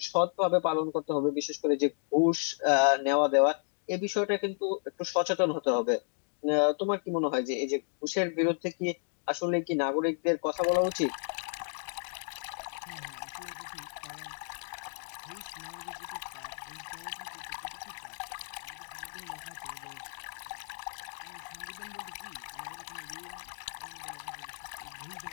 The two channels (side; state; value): right; silent; digital silence